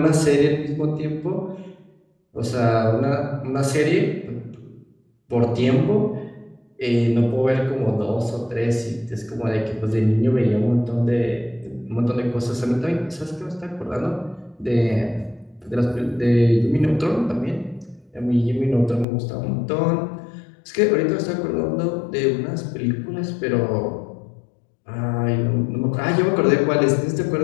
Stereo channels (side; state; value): right; drops out; at 19.1 s